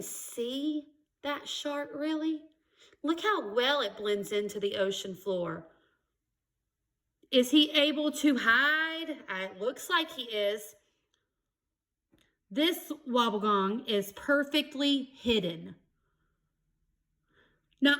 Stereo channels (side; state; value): both; identical; correlation 1.00